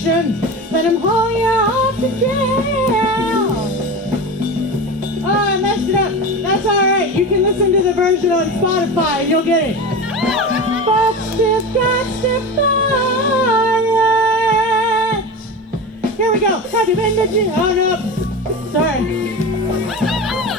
Let them haul you off to jail. Oh, I messed it up. That's all right. You can listen to the version on Spotify and you'll get it. But stiff got stiff it. Here we go. Have you been to jail? Oh, no. Sorry.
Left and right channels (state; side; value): normal; both; correlation 0.27